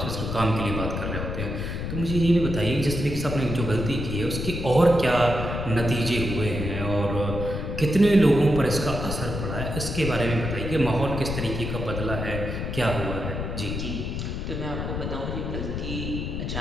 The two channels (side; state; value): left; noise; rumble, 4 dB below the sound